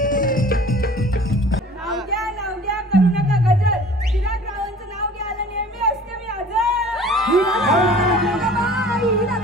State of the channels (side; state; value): both; normal; correlation 0.47